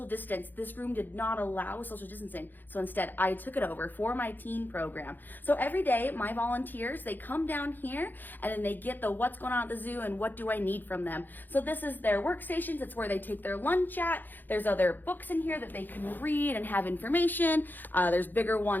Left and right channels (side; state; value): right; late; 0.088 ms